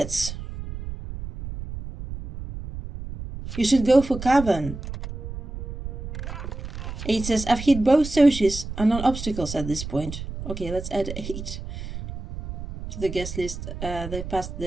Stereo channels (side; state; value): right; noise; rumble, 9 dB below the sound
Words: You should go for cavern. 8 says, I've hit both socials and non-obstacles at this point. Okay, let's add 8 to the guest list. They passed